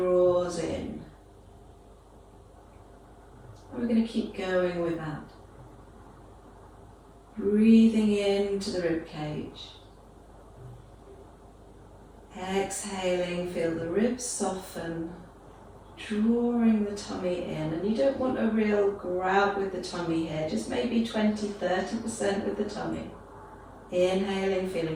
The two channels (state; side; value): identical; both; correlation 1.00